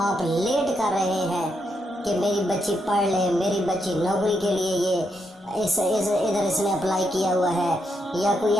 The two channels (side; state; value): both; normal; correlation 0.80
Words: آپ لیٹ کر رہے ہیں کہ میری بچی پڑھ لے، میری بچی نوکری کے لیے یہ ادھر اس نے اپلائی کیا ہوا ہے یا کوئی